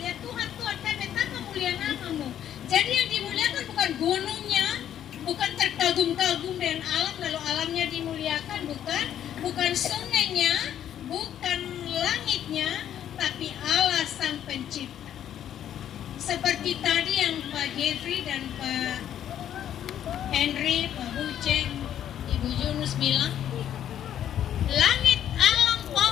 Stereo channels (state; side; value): quieter; right; 10.4 dB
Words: Tuhan, kami betapa mulia namamu. Jadi yang dimuliakan bukan gunungnya, bukan terkagum-kagum dengan alam lalu alamnya dimuliakan, bukan sungainya, bukan langitnya, tapi Allah sang pencipta. Seperti tadi yang Pak Jeffrey dan Pak Henry, Pak Buceng, Ibu Yunus bilang, langit, alam,